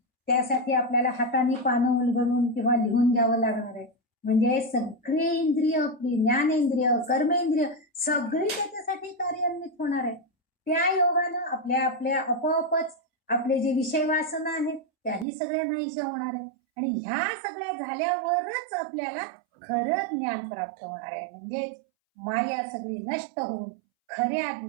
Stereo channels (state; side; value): drops out; left; at 15.2 s